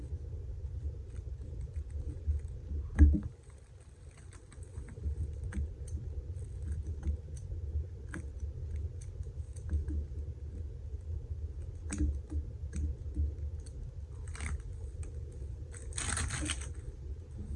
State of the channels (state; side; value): identical; both; correlation 1.00